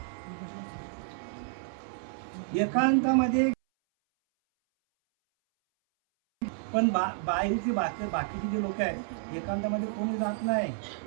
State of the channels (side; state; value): left; silent; 58 dB below the other